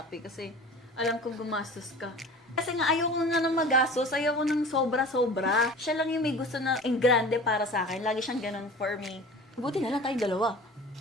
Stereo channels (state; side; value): normal; both; correlation 0.40